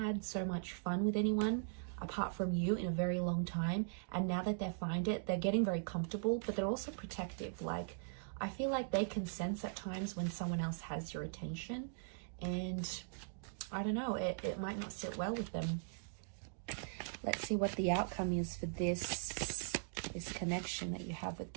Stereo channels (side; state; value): left; silent; digital silence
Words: so much fun with anyone apart from you in a very long time, and now that they find it, they're getting very comfortable, but they're also protective. Like, I feel like they can sense at times when someone else has your attention, and I don't know, it might not sit well with them. Let's see what the outcome is for this connection that you have with